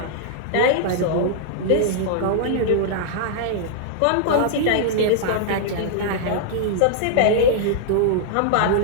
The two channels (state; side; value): different; both; correlation -0.01